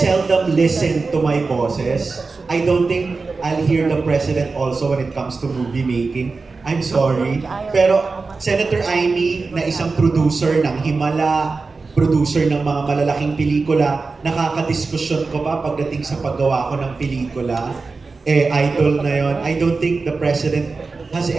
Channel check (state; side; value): quieter; left; 4.1 dB